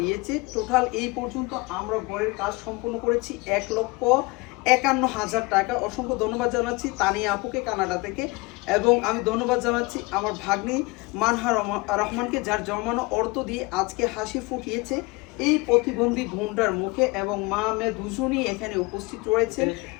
টোটাল এই পর্যন্ত আমরা ঘরের কাজ সম্পূর্ণ করেছি 1,51,000 টাকা। অসংখ্য ধন্যবাদ জানাচ্ছি তানিয়া আপুকে কানাডা থেকে, এবং আমি ধন্যবাদ জানাচ্ছি আমার ভাগ্নি মানহা রহমানকে, যার জমানো অর্থ দিয়ে আজকে হাসি ফুটিয়েছে এই প্রতিবন্ধী বোনটার মুখে। এবং মা মেয়ে দুজনই এখানে উপস্থিত রয়েছেন।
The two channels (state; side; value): quieter; right; 24.6 dB